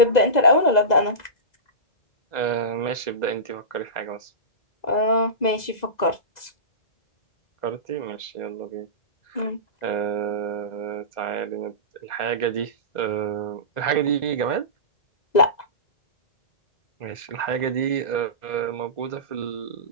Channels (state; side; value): late; right; 2.0 ms